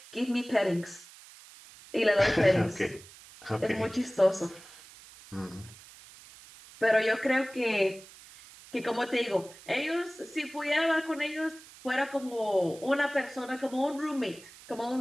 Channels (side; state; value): right; noise; hiss, 20 dB below the sound